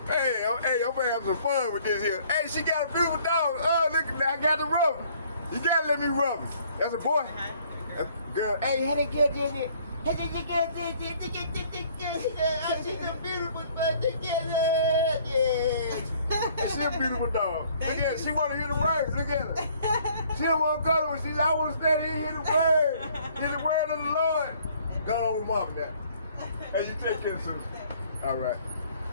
Hey, I'm gonna have some fun with this here. Hey, she got a beautiful dog. Oh, look, I got to rub him. You gotta let me rub him. That's a boy. That's a girl. Hey, how they get in it? How they get she's a beautiful dog together. Yeah. She's a beautiful dog. Look at her. She wanna hear the words. Look at her. She don't wanna go to her. She's I wanna stand here and hear the word. Hear the word of the Lord. Go on with mom now. Hey, you take care, sister. All right.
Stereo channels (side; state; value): both; inverted; correlation -0.59